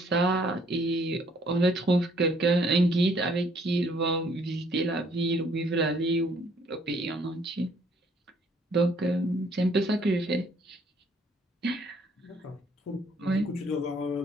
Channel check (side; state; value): both; normal; correlation 0.64